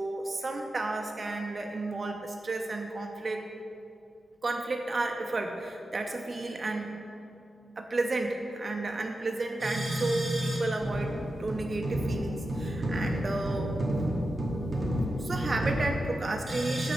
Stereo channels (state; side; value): normal; both; correlation 0.91